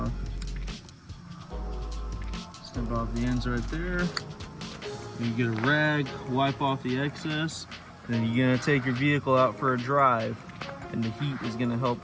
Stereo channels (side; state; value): both; identical; correlation 1.00